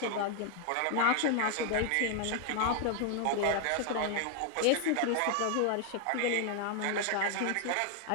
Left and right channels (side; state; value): both; different; correlation 0.00